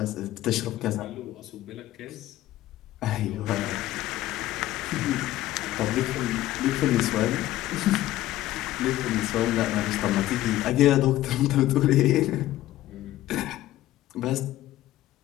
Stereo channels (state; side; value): quieter; right; 14.9 dB